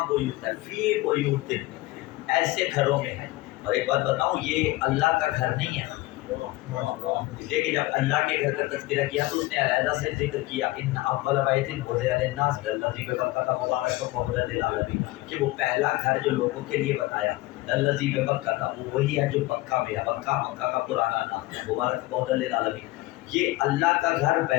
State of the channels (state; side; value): quieter; right; 19.2 dB